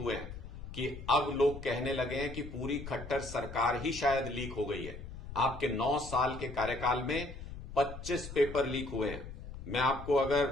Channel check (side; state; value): left; noise; rumble, 11 dB below the sound